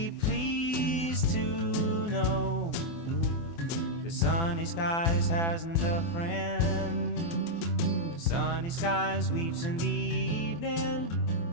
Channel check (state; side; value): late; right; 24 ms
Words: pleased to know the sunny skies hasn't a friend. Sunny skies weeps in the evening.